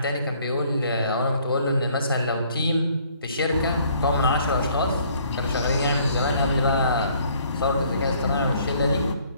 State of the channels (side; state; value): both; inverted; correlation -0.61